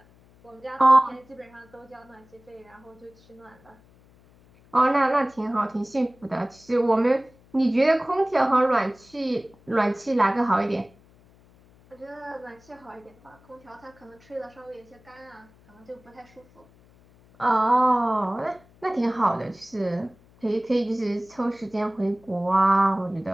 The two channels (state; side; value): noise; left; hum, 28 dB below the sound